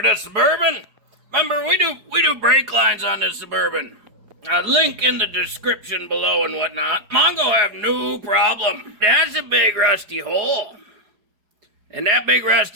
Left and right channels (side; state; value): left; late; 4.8 ms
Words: this Suburban. Remember, we do brake lines on this Suburban. Link in the description below and whatnot. MONGO have no problem. That's a big rusty hole. And that big